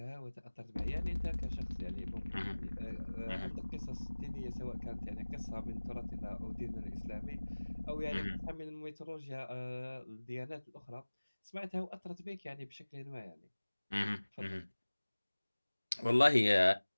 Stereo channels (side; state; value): both; inverted; correlation -1.00